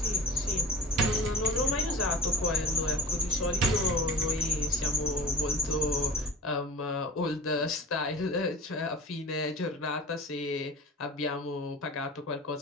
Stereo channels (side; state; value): both; normal; correlation 0.37